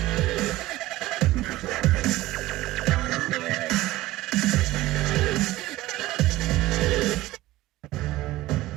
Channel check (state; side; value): quieter; left; 16.9 dB